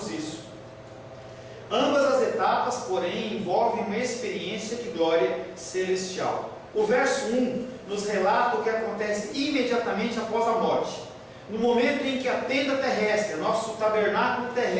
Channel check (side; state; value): both; identical; correlation 1.00